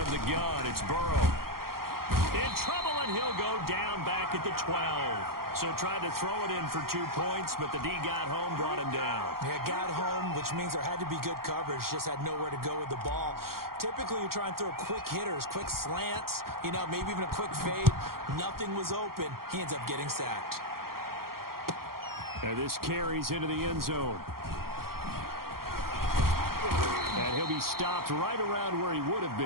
the gun, it's Burrow. In trouble, and he'll go down back at the 12. So tried to throw it in for 2 points, but the D got home, brought him down. Yeah, got home, which means there had to be good coverage. Just had nowhere to go with the ball. Typically, you try and throw quick hitters, quick slants, maybe even a quick fade. Nothing was open. He ends up getting sacked. And this carries into the end zone. And he'll be stopped right around where he would have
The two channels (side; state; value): left; late; 0.93 ms